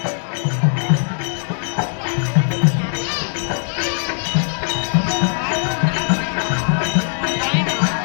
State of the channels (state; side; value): silent; right; 66 dB below the other